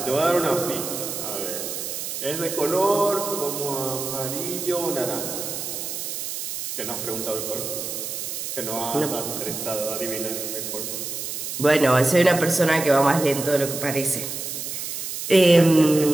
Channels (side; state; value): right; noise; hiss, 5 dB below the sound